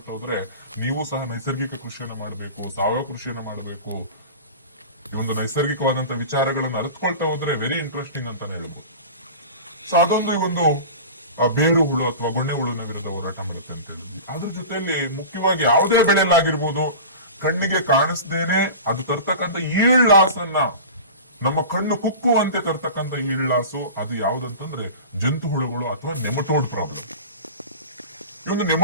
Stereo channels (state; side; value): inverted; both; correlation -0.34